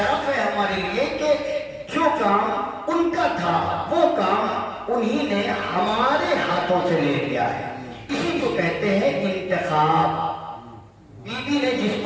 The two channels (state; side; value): identical; both; correlation 1.00